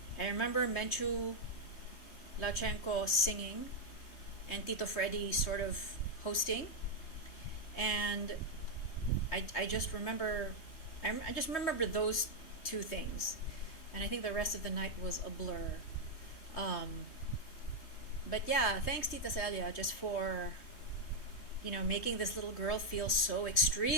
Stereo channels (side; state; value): right; late; 3.1 ms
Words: I remember Menchu Lachenko singing and Tito Freddy sort of hosting. And I just remember, I just remember those two things. And I think the rest of the night was a blur. Um, but yeah, thanks Tita Celia just for, making this little girl feel so